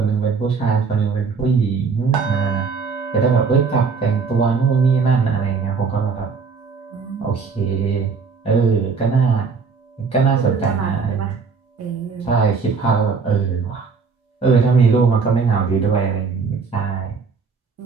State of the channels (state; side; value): quieter; left; 5.2 dB